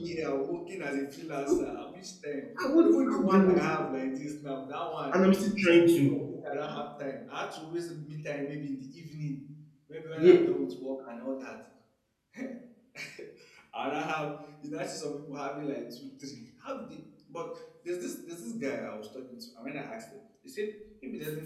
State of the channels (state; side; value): identical; both; correlation 1.00